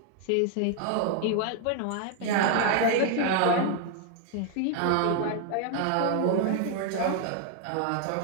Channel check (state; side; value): different; both; correlation 0.00